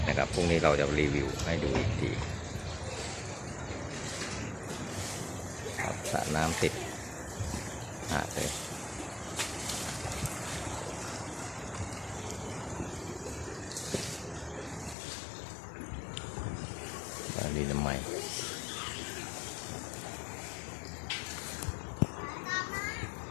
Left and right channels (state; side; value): drops out; right; at 15.0 s